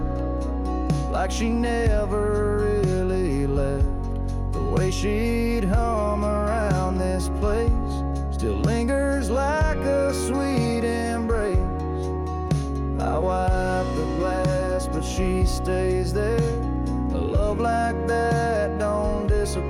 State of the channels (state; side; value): identical; both; correlation 1.00